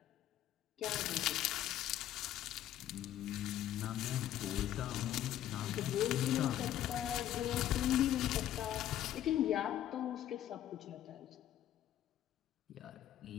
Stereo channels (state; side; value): quieter; right; 12.0 dB